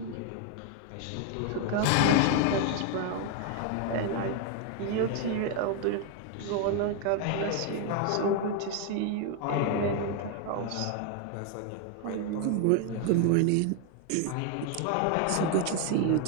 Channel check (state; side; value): different; both; correlation 0.00